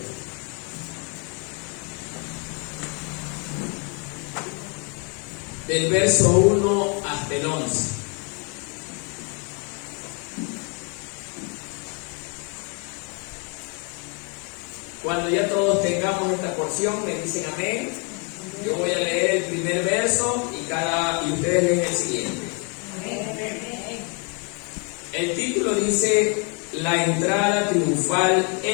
del verso 1 hasta el 11. Cuando ya todos tengamos esta porción, me dicen amén. Yo voy a leer el primer verso y ustedes leen el siguiente. El título dice: La entrada triunfal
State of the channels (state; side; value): quieter; right; 35.3 dB